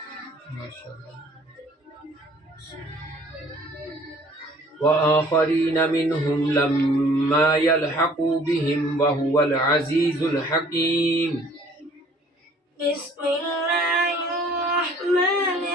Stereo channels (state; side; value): normal; both; correlation 0.55